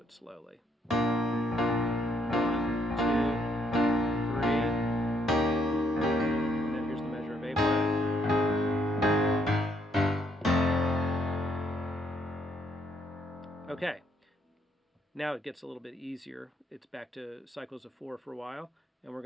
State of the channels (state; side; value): normal; both; correlation 0.72